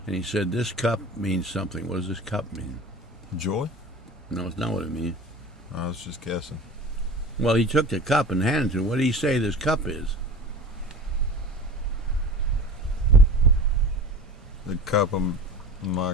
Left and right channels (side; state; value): both; normal; correlation 0.37